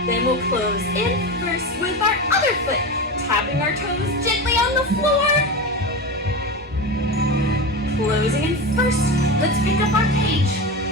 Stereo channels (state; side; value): normal; both; correlation 0.23